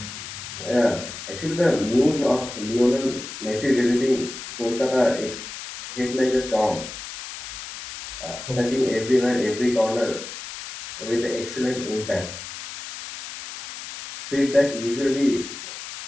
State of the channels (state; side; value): noise; left; hiss, 10 dB below the sound